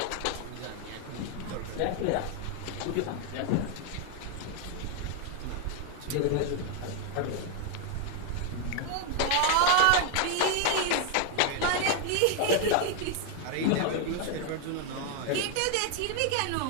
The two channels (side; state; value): both; different; correlation 0.00